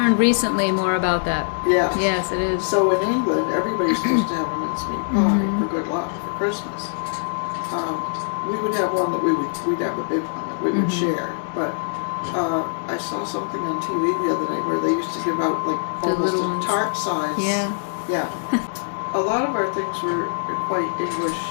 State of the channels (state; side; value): silent; right; 62 dB below the other